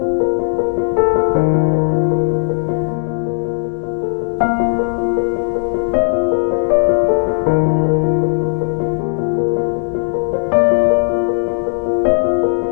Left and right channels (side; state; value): right; silent; 65 dB below the other